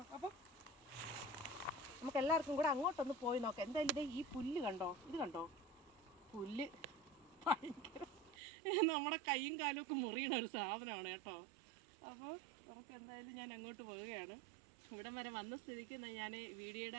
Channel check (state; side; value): drops out; left; at 8.3 s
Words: അപ്പം നമുക്ക് എല്ലാവർക്കും കൂടെ അങ്ങോട്ടൊന്ന് പോയി നോക്കാം. എന്തായാലും ഈ പുല്ല് കണ്ടോ, ഇത് കണ്ടോ, പുല്ല് ഭയങ്കര നമ്മുടെ കൈയും കാലും ഒക്കെ മുറിയണ ഒരു സാധനമാണ് കേട്ടോ. അപ്പോൾ നമുക്ക് എന്തായാലും ഞാൻ അങ്ങോട്ട് പോവുകയാണ്. ഇവിടം വരെ വന്ന സ്ഥിതിക്ക് ഞാൻ